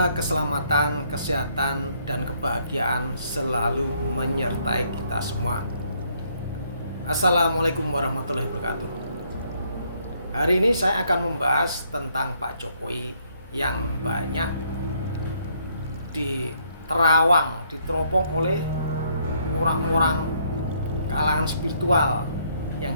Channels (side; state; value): both; inverted; correlation -0.69